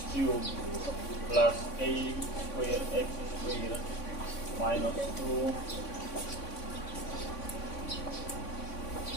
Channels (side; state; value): right; late; 3.5 ms